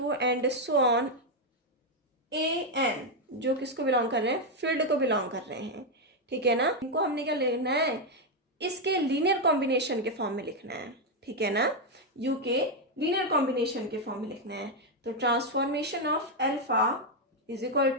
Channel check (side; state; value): both; normal; correlation 0.02